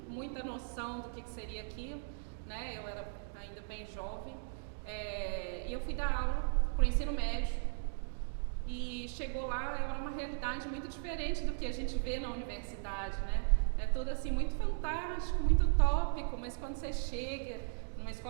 muita noção do que seria aquilo, né, eu era ainda bem jovem, e eu fui dar aula para o ensino médio. E chegou lá, era uma realidade muito diferente do que a gente vê na universidade, né? É tudo assim muito fantástico, muito utópico, mas quando você chega numa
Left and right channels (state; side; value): silent; left; digital silence